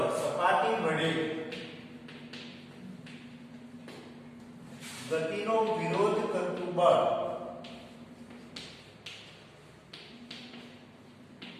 સપાટી વડે ગતિનો વિરોધ કરતું બળ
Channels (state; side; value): identical; both; correlation 1.00